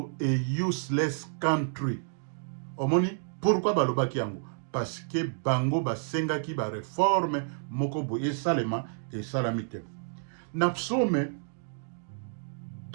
a useless country. Omoni pourquoi balobaki yango? Parce que bango basengaki ba réforme moko bo esalema esalami te. Na Psaume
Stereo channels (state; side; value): silent; left; digital silence